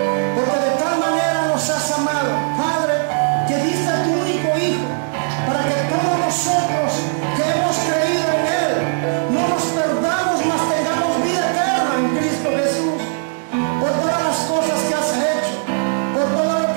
porque de tal manera nos has amado, Padre, que diste a tu único Hijo, para que todos nosotros que hemos creído en Él no nos perdamos, mas tengamos vida eterna en Cristo Jesús. Por todas las cosas que has hecho, por todo lo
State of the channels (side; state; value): left; silent; digital silence